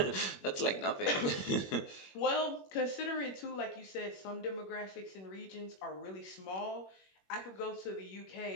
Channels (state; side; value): late; right; 21 ms